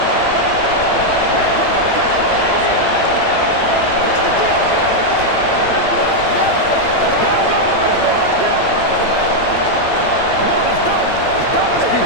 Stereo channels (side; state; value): right; late; 8.9 ms